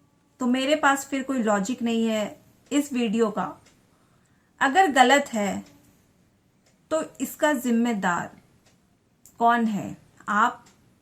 तो मेरे पास फिर कोई लॉजिक नहीं है इस वीडियो का। अगर गलत है तो इसका जिम्मेदार कौन है? आप,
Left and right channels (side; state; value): both; identical; correlation 1.00